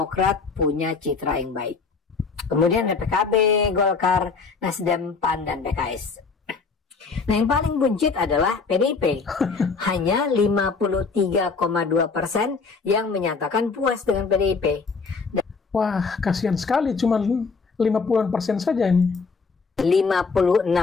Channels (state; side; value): quieter; right; 4.7 dB